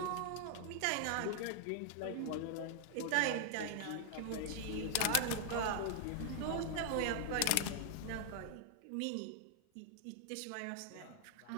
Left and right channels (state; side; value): different; both; correlation 0.00